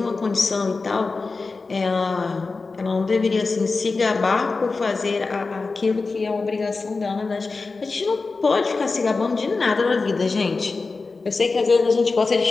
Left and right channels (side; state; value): right; quieter; 4.0 dB